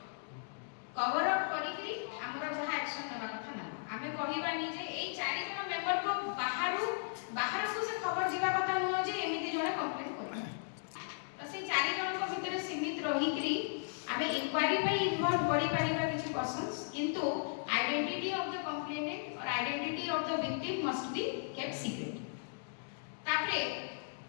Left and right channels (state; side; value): silent; right; digital silence